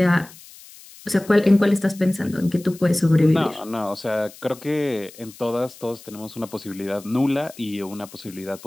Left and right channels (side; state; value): left; noise; hiss, 20 dB below the sound